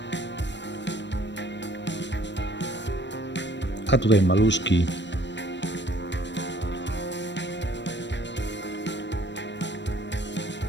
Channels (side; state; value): right; late; 0.52 ms